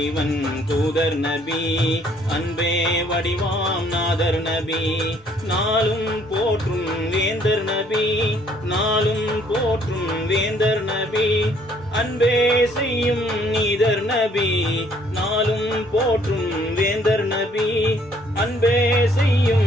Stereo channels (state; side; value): noise; right; rumble, 29 dB below the sound